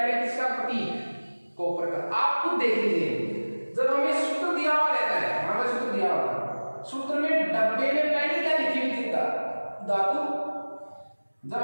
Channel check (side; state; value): both; inverted; correlation -1.00